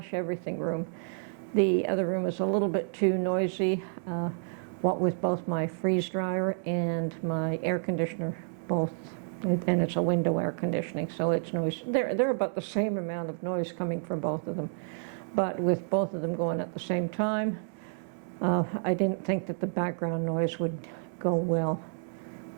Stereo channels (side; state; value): left; silent; 58 dB below the other